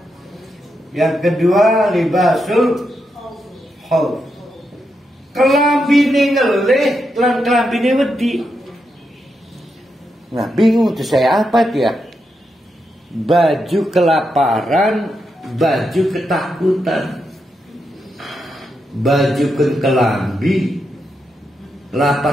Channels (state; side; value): normal; both; correlation 0.84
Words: Yang kedua, libasul khauf. Kelambine ngeleh, kelambine wedi. Nah, bingung tuh saya apa dia? Baju kelaparan, baju ketakutan. Baju kelambi,